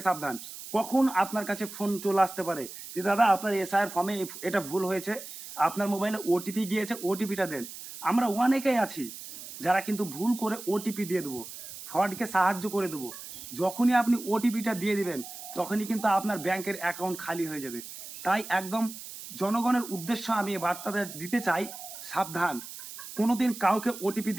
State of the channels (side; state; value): right; noise; hiss, 12 dB below the sound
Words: সাবধান। কখন আপনার কাছে ফোন চলে আসতে পারে যে দাদা আপনার এসআইয়ের ফর্মে এটা ভুল হয়েছে, আপনার মোবাইলে ওটিপি গিয়েছে, ওটিপিটা দেন। আমরা অনেকেই আছি যারা কিন্তু ভুল করে ওটিপি দিয়ে দেবো, ফ্রডকে সাহায্য করে দেবো। যখনই আপনি ওটিপিটা দিয়ে দিবেন, তখনই কিন্তু আপনার ব্যাংকের অ্যাকাউন্ট খালি হয়ে যাবে। তাই একদম জনগণের উদ্দেশ্য আমি এই বার্তাটা দিতে চাই, সাবধান। কোনোদিন কাউকে ওটিপি